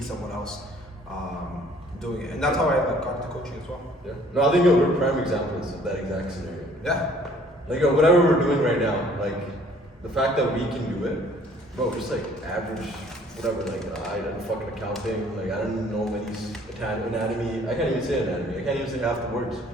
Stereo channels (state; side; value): normal; both; correlation 0.57